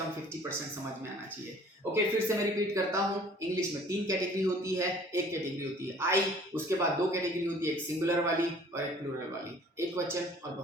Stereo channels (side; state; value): both; normal; correlation 0.52